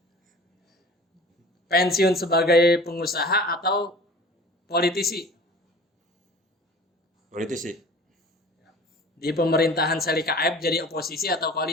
Pensiun sebagai pengusaha atau politisi? Politisi. Di pemerintahan Selika Aep jadi oposisi atau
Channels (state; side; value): normal; both; correlation 0.43